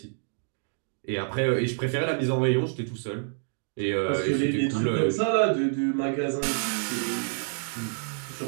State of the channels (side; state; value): left; silent; digital silence